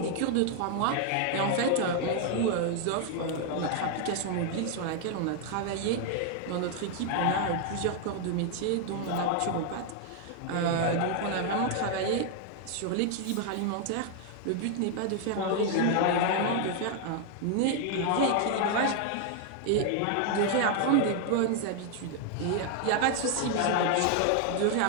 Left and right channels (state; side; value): different; both; correlation 0.00